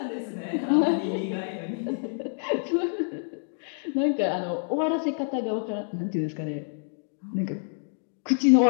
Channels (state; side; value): silent; right; digital silence